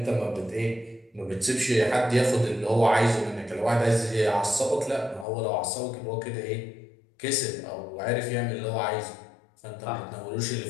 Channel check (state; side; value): drops out; right; at 5.2 s